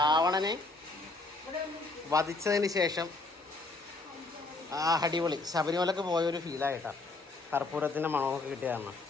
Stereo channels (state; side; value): quieter; right; 3.3 dB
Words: വധിച്ചതിന് ശേഷം അടിപൊളി ശബരിമലക്ക് പോയൊരു ഫീലായിട്ടാണ്. കർപ്പൂരത്തിൻ്റെ മണമൊക്കെ കിട്ടിയതാണ്.